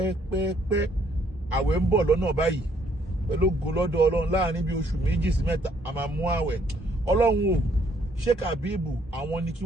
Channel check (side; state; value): both; normal; correlation 0.67